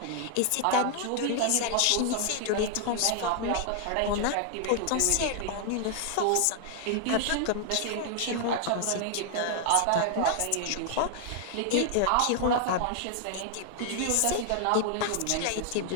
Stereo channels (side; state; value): both; different; correlation 0.00